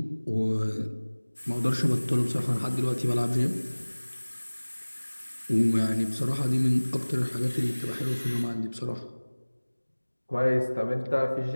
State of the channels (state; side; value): inverted; both; correlation -1.00